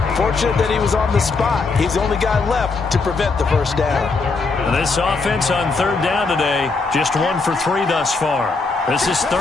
Fortunate that he was on the spot. He's the only guy left to prevent the first down. And this offense on 3rd down today, just 1 for 3 thus far. This is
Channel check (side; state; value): right; quieter; 4.1 dB